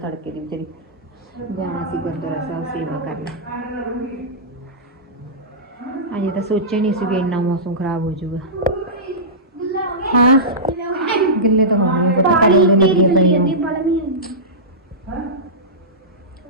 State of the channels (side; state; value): both; normal; correlation -0.16